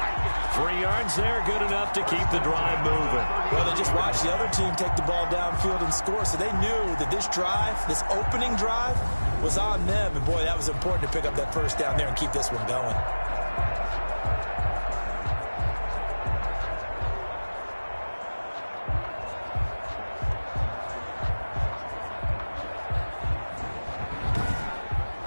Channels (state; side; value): inverted; both; correlation -1.00